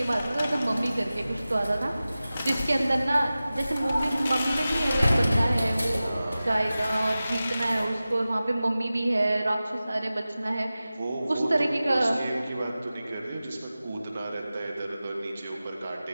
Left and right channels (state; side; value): inverted; both; correlation -0.96